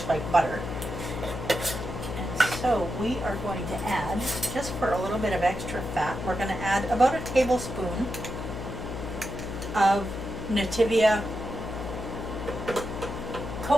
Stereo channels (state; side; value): noise; left; hum, 7 dB below the sound